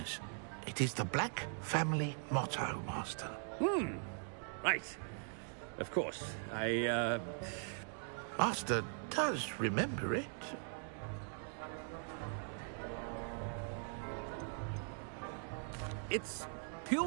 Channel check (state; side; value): silent; left; 50 dB below the other